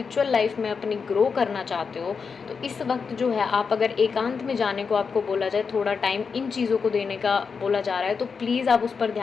लाइफ में अपनी ग्रो करना चाहते हो, तो इस वक्त जो है आप अगर एकांत में जाने को आपको बोला जाए, थोड़ा टाइम इन चीज़ों को देने का बोला जा रहा है, तो प्लीज़ आप उस पर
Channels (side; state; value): right; quieter; 5.5 dB